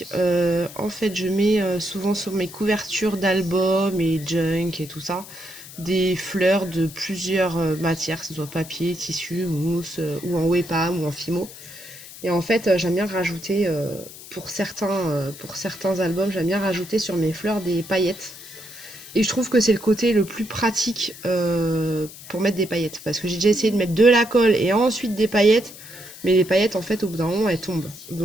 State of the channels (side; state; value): left; noise; hiss, 16 dB below the sound